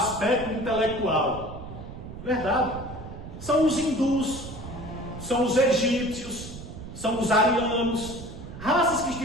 intelectual. Verdade. São os hindus, são os egípcios, são os arianos, raças que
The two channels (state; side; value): noise; right; rumble, 12 dB below the sound